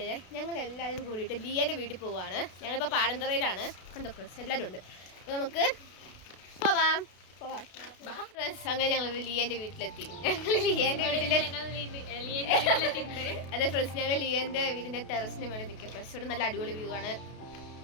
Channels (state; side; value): late; right; 32 ms